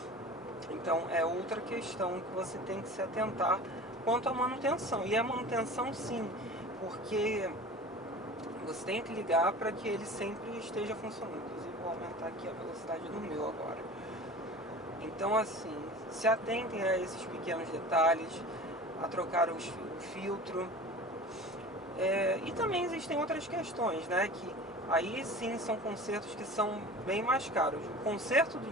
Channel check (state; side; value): normal; both; correlation 0.37